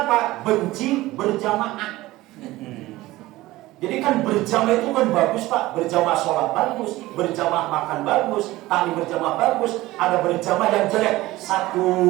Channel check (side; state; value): left; quieter; 17.9 dB